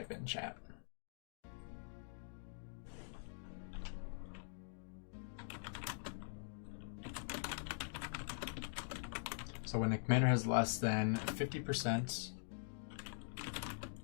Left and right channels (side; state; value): right; silent; digital silence